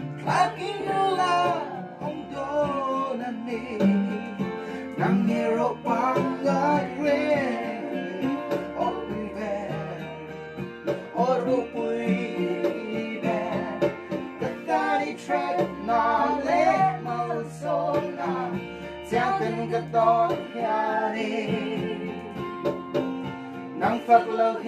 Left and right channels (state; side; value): identical; both; correlation 1.00